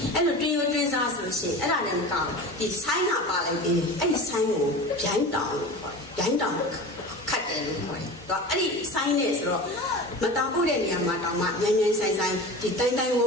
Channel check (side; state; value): both; normal; correlation 0.33